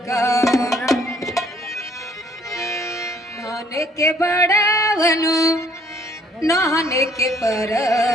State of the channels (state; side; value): normal; both; correlation 0.62